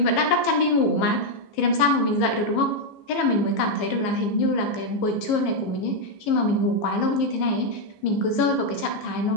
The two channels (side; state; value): right; late; 15 ms